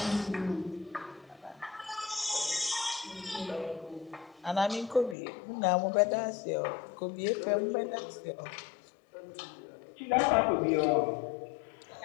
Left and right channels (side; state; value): right; drops out; at 5.2 s